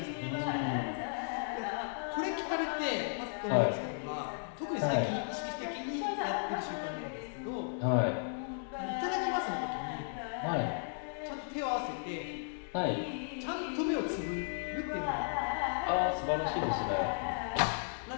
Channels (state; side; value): silent; right; digital silence